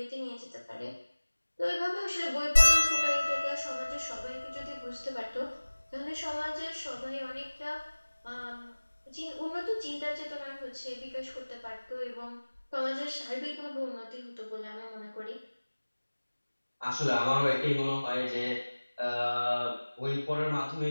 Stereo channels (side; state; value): both; inverted; correlation -1.00